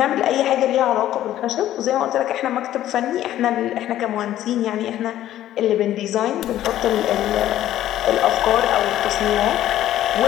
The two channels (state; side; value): quieter; right; 12.9 dB